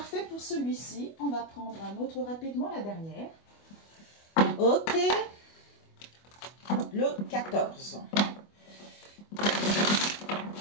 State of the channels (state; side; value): late; right; 25 ms